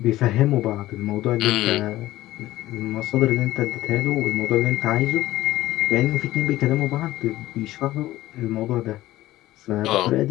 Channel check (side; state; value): right; quieter; 16.0 dB